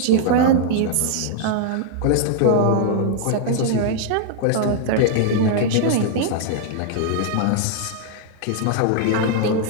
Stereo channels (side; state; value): both; different; correlation 0.00